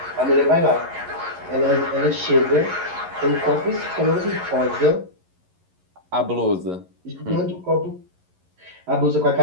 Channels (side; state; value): left; late; 11 ms